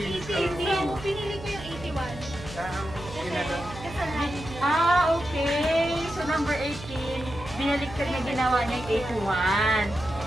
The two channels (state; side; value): noise; right; hum, 13 dB below the sound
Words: So, pinili ko yung 81. Kasi kasal namin yun. Okay. So, number 18, binaliktad na ginawa niya yung 81.